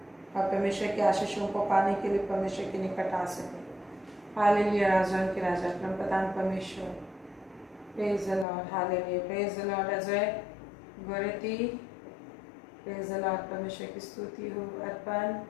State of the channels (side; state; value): right; drops out; at 8.5 s